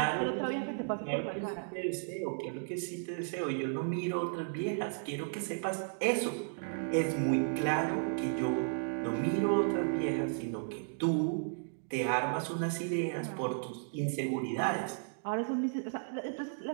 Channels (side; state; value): left; silent; digital silence